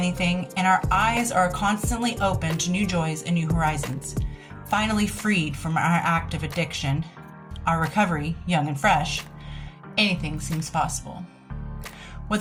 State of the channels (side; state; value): both; identical; correlation 1.00